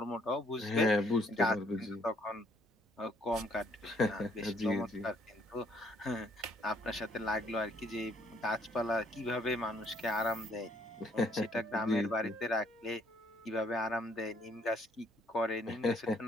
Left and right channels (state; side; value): normal; both; correlation 0.65